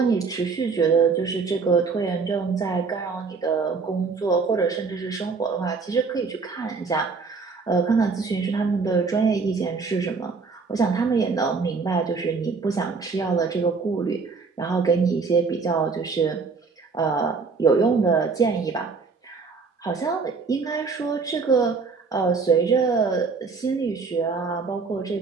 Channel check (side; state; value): left; quieter; 4.7 dB